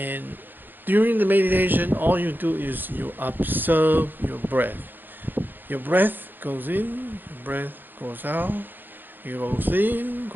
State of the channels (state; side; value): late; left; 0.092 ms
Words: during the meditation, all you do is you observe your breath. Your breath goes in, your breath goes out, it goes in,